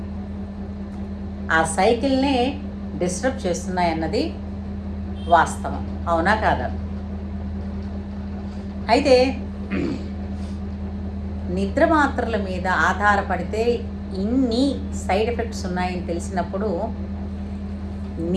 ఆ సైకిల్నే డిస్టర్బ్ చేస్తున్నాయన్నది వాస్తవం. అవునా కాదా? అయితే నిద్ర మాత్రల మీద ఆధారపడితే ఇన్ని సైడ్ ఎఫెక్ట్స్ ఉన్నాయని తెలిసినప్పుడు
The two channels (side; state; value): both; identical; correlation 1.00